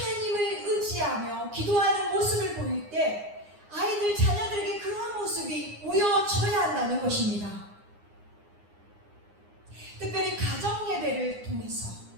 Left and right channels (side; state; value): left; late; 9.7 ms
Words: 의지하며 기도하는 모습을 보일 때 아이들, 자녀들에게 그러한 모습이 보여져야 한다는 것입니다. 특별히 가정 예배를 통해서